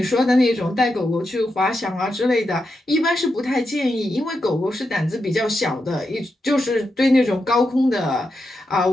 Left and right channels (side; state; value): both; normal; correlation 0.86